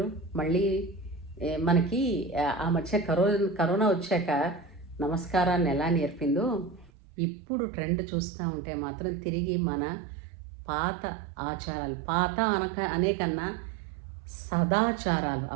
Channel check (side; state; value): left; drops out; at 6.9 s